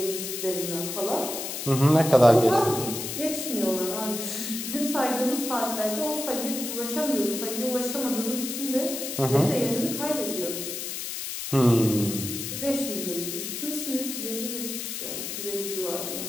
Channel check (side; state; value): left; noise; hiss, 5 dB below the sound